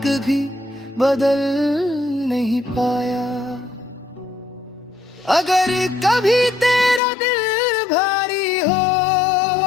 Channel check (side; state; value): right; drops out; at 7.0 s